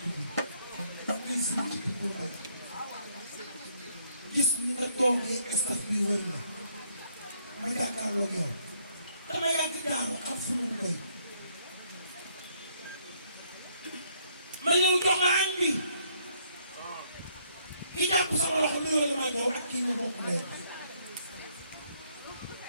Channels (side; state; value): both; inverted; correlation -0.68